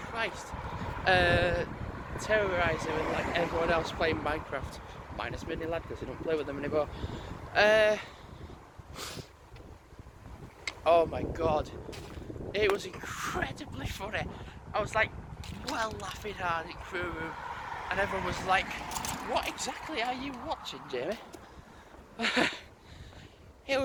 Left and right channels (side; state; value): both; identical; correlation 1.00